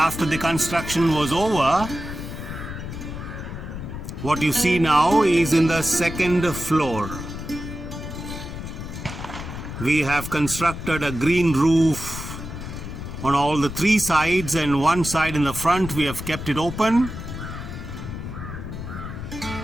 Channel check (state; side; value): noise; left; rumble, 8 dB below the sound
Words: the construction was over, what you see now is in the second floor. We have constructed a green roof on all the three sides, and one side in the front we have kept it open.